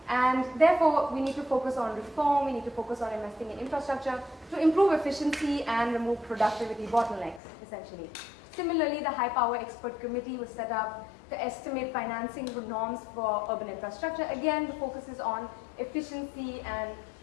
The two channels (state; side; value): drops out; right; at 7.4 s